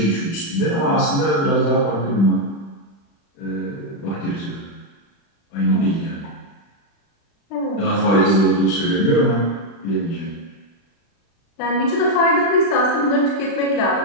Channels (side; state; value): right; late; 36 ms